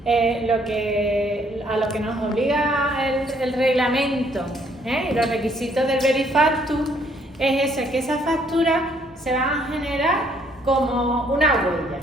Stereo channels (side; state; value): both; normal; correlation 0.66